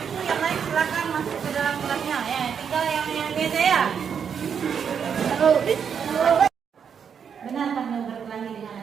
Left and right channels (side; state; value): left; quieter; 7.3 dB